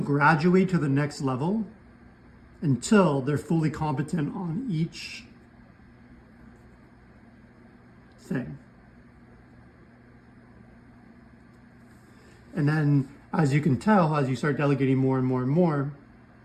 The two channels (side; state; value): both; identical; correlation 1.00